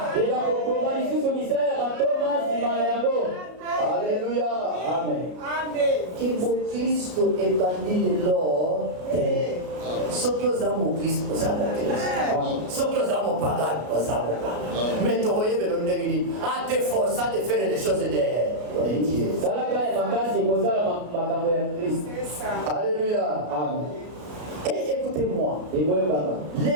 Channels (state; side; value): late; left; 33 ms